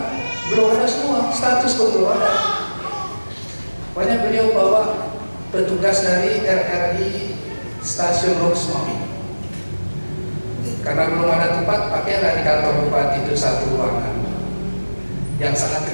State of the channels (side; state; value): both; inverted; correlation -1.00